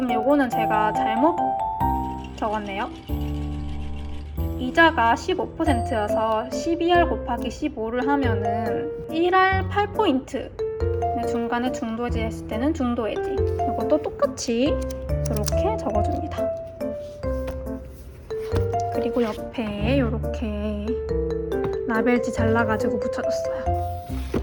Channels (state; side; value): identical; both; correlation 1.00